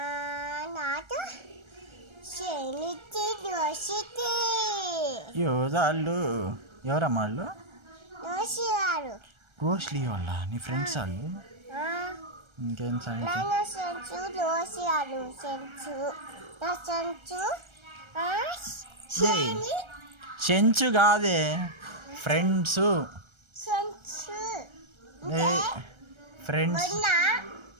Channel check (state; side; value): late; left; 1.3 ms